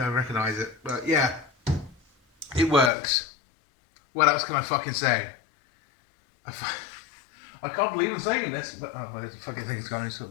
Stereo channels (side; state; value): right; drops out; at 2.9 s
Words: recognise it. But yeah, it works. What else can I fucking say? I can't believe I'm saying this, but oh, well, the fucking thing's gone